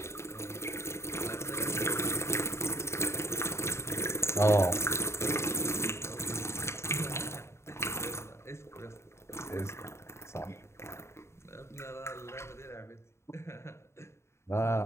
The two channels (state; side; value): late; right; 0.13 ms